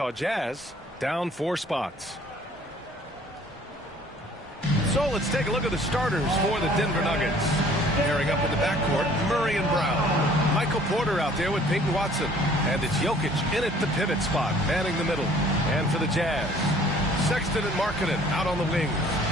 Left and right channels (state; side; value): normal; both; correlation 0.55